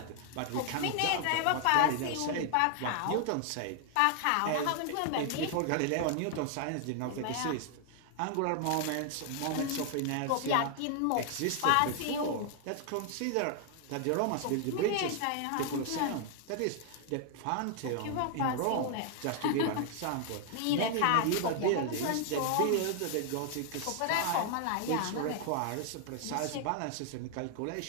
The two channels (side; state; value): both; different; correlation 0.00